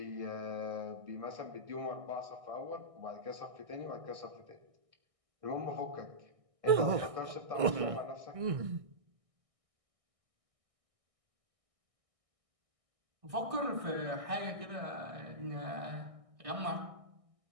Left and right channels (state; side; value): late; left; 1.6 ms